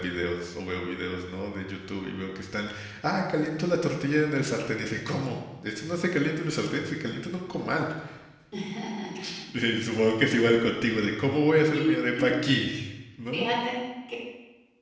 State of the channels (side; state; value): both; identical; correlation 1.00